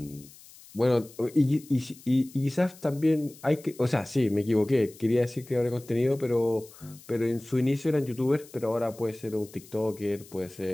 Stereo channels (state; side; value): noise; left; hiss, 22 dB below the sound